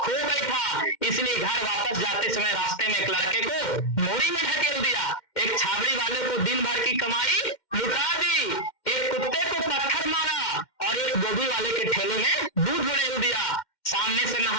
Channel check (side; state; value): right; late; 2.1 ms